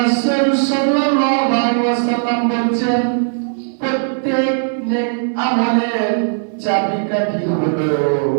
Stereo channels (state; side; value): silent; left; digital silence